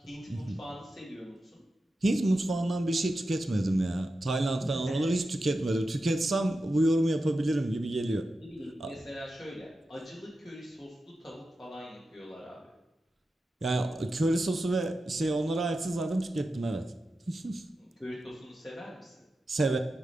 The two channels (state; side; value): normal; both; correlation 0.91